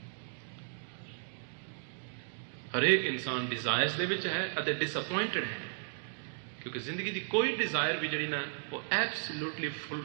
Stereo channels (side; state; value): left; silent; digital silence